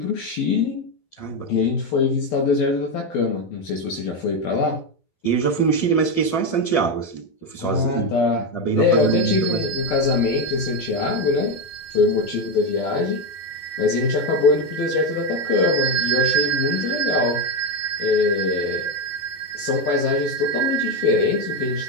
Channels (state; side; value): late; right; 12 ms